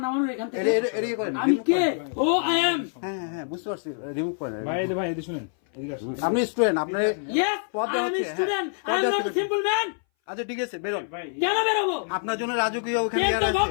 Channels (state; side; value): silent; right; 59 dB below the other